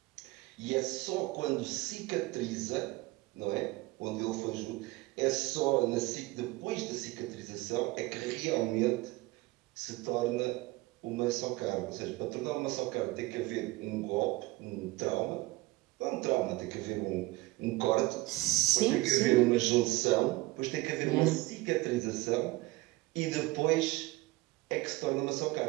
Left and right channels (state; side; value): quieter; left; 20.8 dB